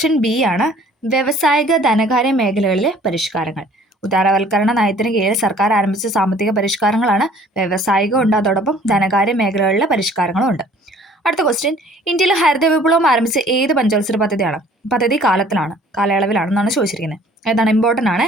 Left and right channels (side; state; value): both; normal; correlation 0.54